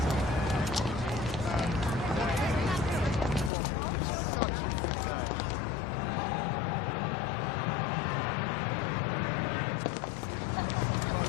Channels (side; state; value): right; drops out; at 3.5 s